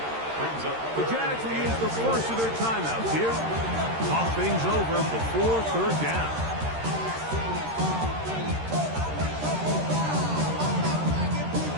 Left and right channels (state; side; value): late; left; 13 ms